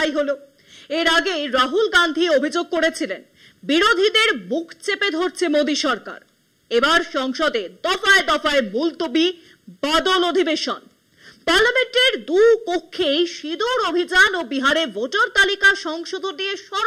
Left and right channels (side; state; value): both; identical; correlation 1.00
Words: হলো। এর আগে রাহুল গান্ধী অভিযোগ করেছিলেন বিরোধীদের বুক চেপে ধরছে মোদী সরকার। এবার সংসদে দফায় দফায় মুলতবি বাদল অধিবেশন। পার্লামেন্টের দু কক্ষে সিঁদুর অভিযান ও বিহারে ভোটার তালিকা সংশোধন নিয়ে